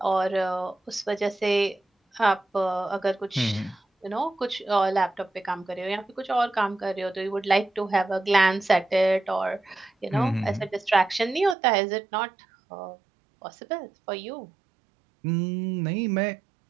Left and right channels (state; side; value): drops out; left; at 11.6 s